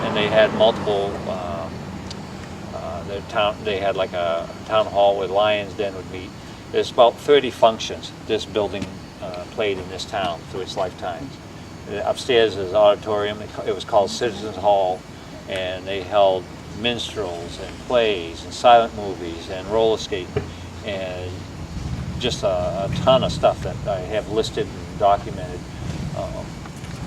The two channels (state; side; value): identical; both; correlation 1.00